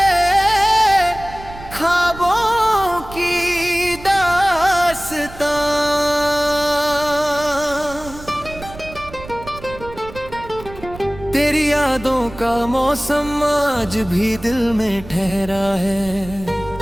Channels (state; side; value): noise; right; rumble, 16 dB below the sound